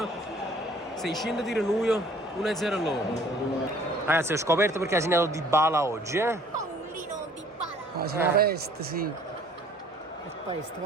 600 tiri noi, 1-0 loro. Ragazzi, ho scoperto perché ha segnato Di Bala oggi, Paolino Di Bala. Ma c'è una peste, sì. È peste,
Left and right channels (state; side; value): normal; both; correlation 0.55